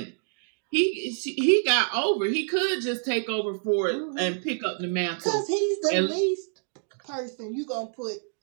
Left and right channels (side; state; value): left; silent; digital silence